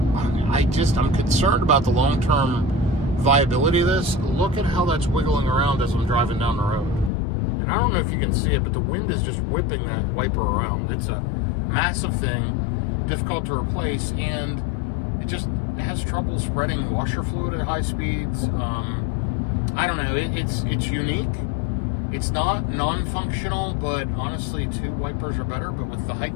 I'm concerned about the long-term viability of this. Look at how that's wiggling around as I'm driving down the road. And I don't know if you can see it, but the wind is just whipping that wiper around. It's a massive thing, difficult to replace, and it has trouble spreading washer fluid at high speeds. I don't know. It's unique. It's not non-functional, but honestly, 2 wipers are better. But with the height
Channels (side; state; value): right; drops out; at 7.1 s